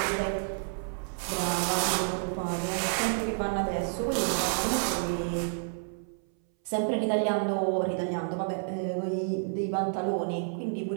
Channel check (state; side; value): silent; left; 58 dB below the other